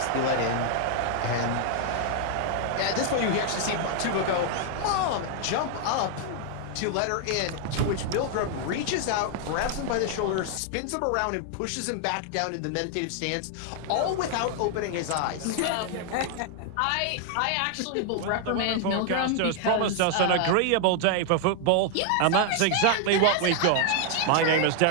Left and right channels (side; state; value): both; different; correlation 0.00